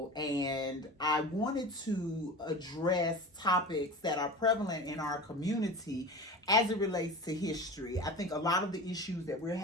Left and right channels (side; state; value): both; normal; correlation 0.33